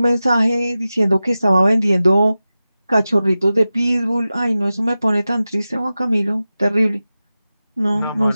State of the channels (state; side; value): inverted; both; correlation -0.94